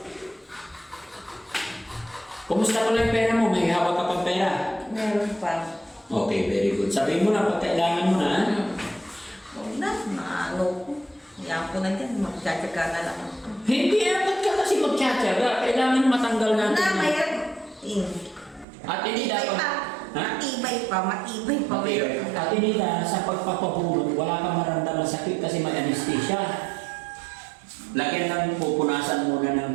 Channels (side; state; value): left; drops out; at 18.7 s